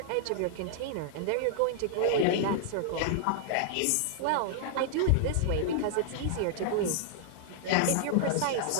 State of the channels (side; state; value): both; different; correlation -0.01